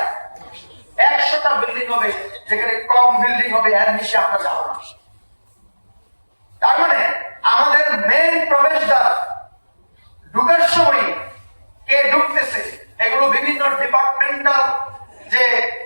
100টা বিল্ডিং হবে। যেখানে কম বিল্ডিং হবে, এর নিচে আমরা যাবো না। তার মানে আমাদের মেইন প্রবেশদ্বার ঢুকার সময় কে ঢুকতেছে, এগুলো বিভিন্ন ডিপার্টমেন্টাল যে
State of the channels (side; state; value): both; inverted; correlation -1.00